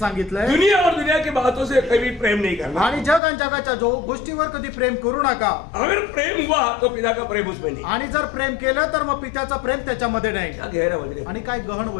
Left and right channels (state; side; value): drops out; right; at 3.2 s